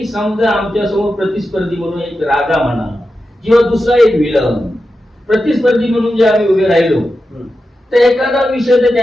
समजा आमच्या समोर प्रतिस्पर्धी म्हणून एक राजा म्हणा किंवा दुसरा एक विलन प्रतिस्पर्धी म्हणून जे आम्ही उभे राहिलो तर एखादा विषय जर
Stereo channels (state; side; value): normal; both; correlation 0.90